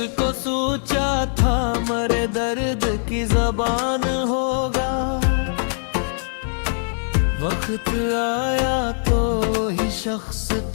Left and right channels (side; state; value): right; silent; 58 dB below the other